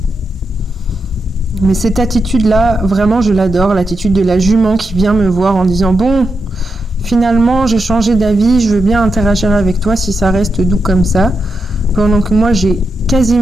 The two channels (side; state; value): both; normal; correlation 0.86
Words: Mais cette attitude-là, vraiment je l'adore, l'attitude de la jument qui vient me voir en disant « Bon, finalement j'ai changé d'avis, je veux bien interagir avec toi si ça reste doux comme ça. » Pendant que moi j'ai